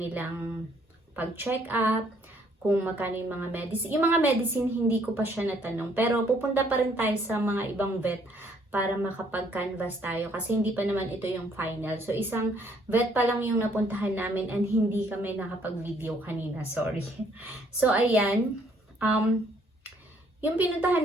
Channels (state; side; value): normal; both; correlation 0.65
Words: pag-check up, kung magkano yung mga medicine. Yung mga medicine, hindi ko pa siya natanong. Pero pupunta pa rin tayo sa mga ibang vet para makapag-canvas tayo. Kasi hindi pa naman ito yung final. So, isang vet pa lang yung napuntahan namin and hindi kami nakapag-video kanina. Sorry. So, ayan. Yung